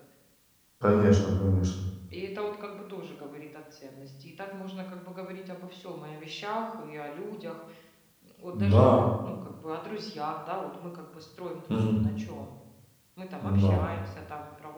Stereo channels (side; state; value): both; identical; correlation 1.00